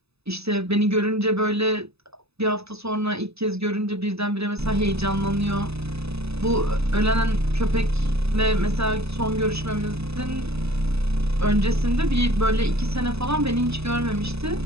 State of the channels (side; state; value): left; late; 0.79 ms